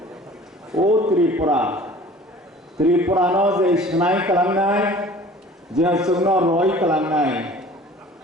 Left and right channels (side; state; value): both; normal; correlation 0.46